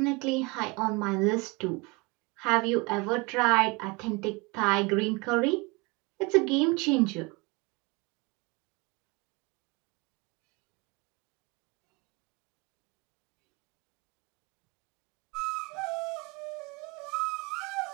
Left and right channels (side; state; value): left; quieter; 26.8 dB